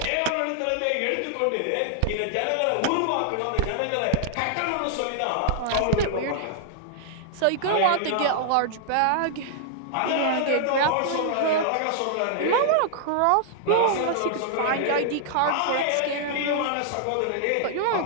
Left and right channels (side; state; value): both; different; correlation -0.01